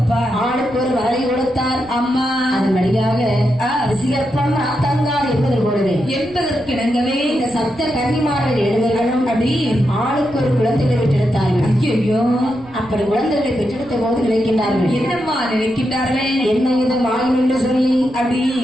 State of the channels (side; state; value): right; noise; rumble, 23 dB below the sound